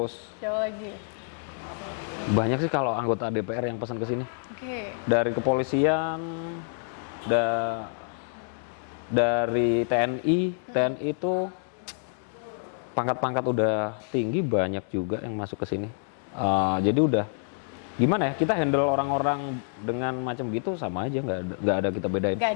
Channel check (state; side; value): silent; right; digital silence